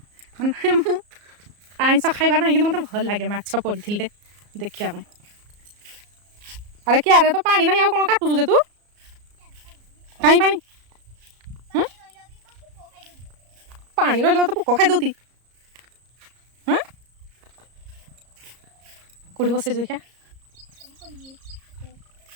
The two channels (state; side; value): late; left; 34 ms